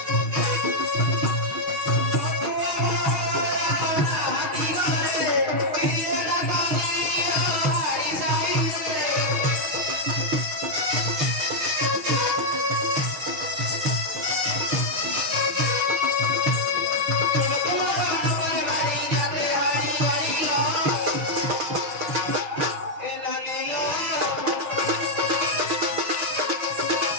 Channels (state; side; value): late; left; 6.4 ms